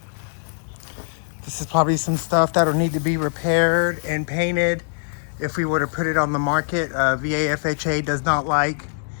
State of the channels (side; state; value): right; silent; digital silence